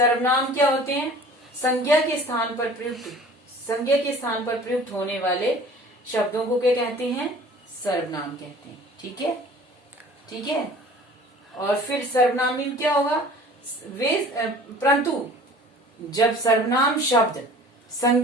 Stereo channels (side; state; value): both; normal; correlation 0.46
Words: क्या होते हैं, संज्ञा के स्थान पर प्रयुक्त होने वाले शब्दों को क्या कहते हैं, सर्वनाम कहते हैं। ठीक है, ठीक है। और फिर सर्वनामी में क्या होगा, परंतु जब सर्वनाम शब्द